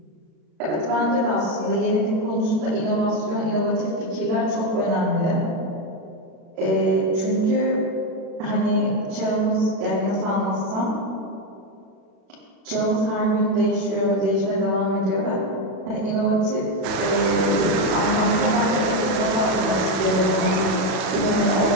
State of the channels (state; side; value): late; left; 37 ms